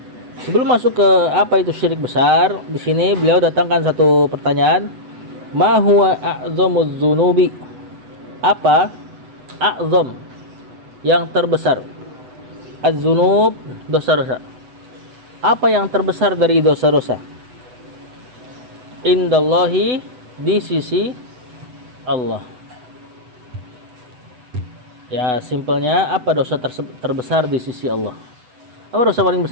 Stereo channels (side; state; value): left; late; 8.0 ms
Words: Sebelum masuk ke apa itu syirik besar, di sini beliau datangkan satu pertanyaan. Ma huwa a'zamuz dzunubi? Apa a'zam? Yang terbesar. Az-dzunub, dosa-dosa. Apa yang terbesar dari dosa-dosa? Indallahi, di sisi Allah. Ya, simpelnya apa dosa terbesar di sisi Allah? Apa dosa paling